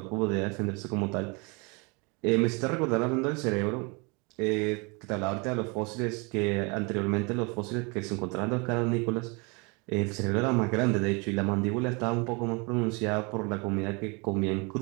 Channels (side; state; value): left; quieter; 30.3 dB